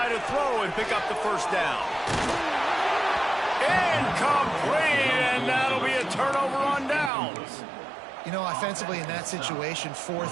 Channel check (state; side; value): drops out; left; at 7.1 s